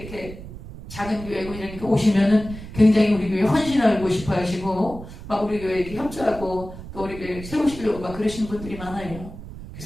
작은 교회고 이러니까 오시면은 굉장히 우리 교회 헌신하고 싶어 하시고 막 우리 교회 이렇게 협조하고 또 우리 교회 세우시려고 막 그러시는 분들이 많아요.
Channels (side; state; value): right; noise; rumble, 13 dB below the sound